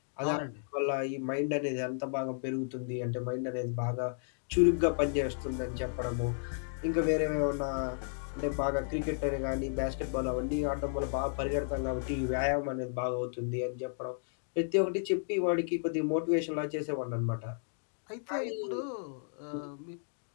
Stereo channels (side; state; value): right; silent; digital silence